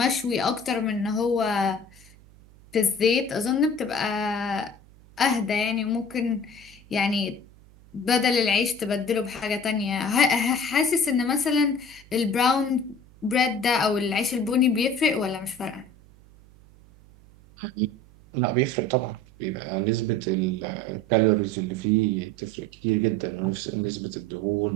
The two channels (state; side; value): noise; right; hum, 25 dB below the sound